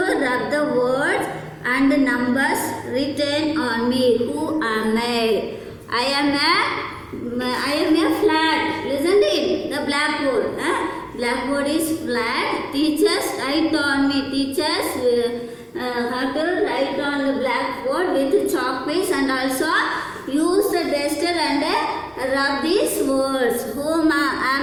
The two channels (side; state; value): both; identical; correlation 1.00